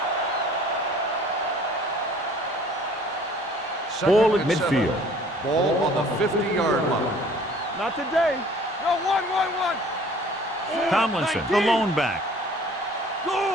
Ball at midfield. Ball on the 50-yard line. Not today. No, one. Tomlinson, the lone back.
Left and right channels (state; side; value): normal; both; correlation 0.53